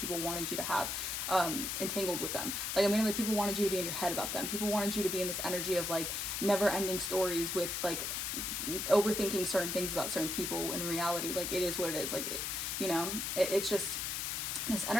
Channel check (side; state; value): left; noise; hiss, 2 dB below the sound